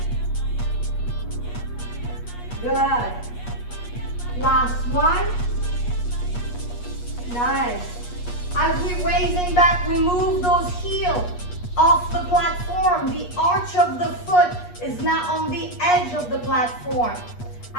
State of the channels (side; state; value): right; late; 8.3 ms